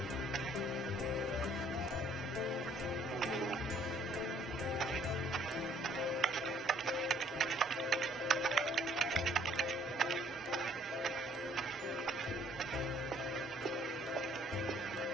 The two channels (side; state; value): both; normal; correlation 0.61